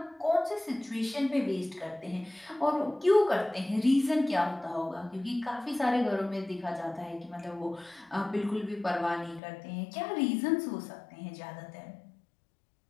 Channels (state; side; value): drops out; right; at 9.4 s